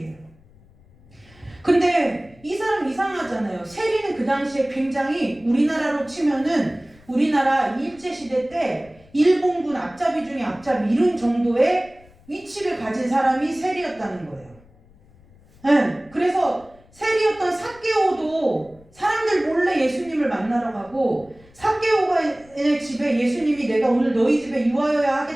근데 이 사람 이상하잖아요. 세리는 그 당시에 굉장히 우리나라로 치면은 우리나라 일제시대 때 일본군 앞잡이 중에 앞잡이 이런 정도의 위치를 가진 사람이 세리였다는 거예요. 네, 그래서 세리였던 삭개오도 사람들 몰래 예수님을 만나러 가고 삭개오의 집에 예수님이 내가 오늘 너희 집에 유하여야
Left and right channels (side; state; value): left; noise; rumble, 27 dB below the sound